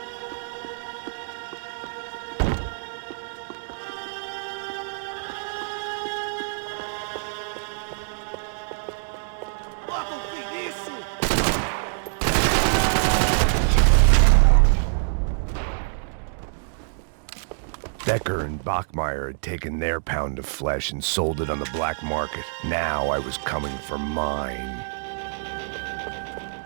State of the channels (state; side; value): silent; left; digital silence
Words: Becker and Bachmeyer had taken their pound of flesh and sold it on the black market. Now I was coming for mine.